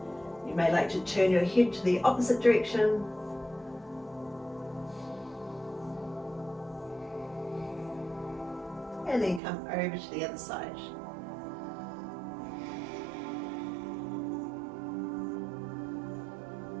You may like to turn your head to the opposite direction. And then come over to the other side.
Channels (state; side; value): drops out; left; at 9.4 s